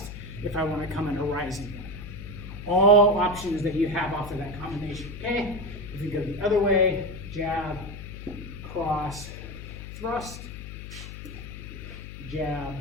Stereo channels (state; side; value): noise; left; hum, 11 dB below the sound